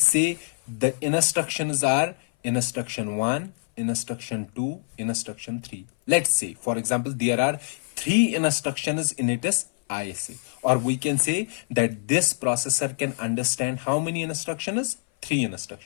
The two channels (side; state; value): right; silent; 57 dB below the other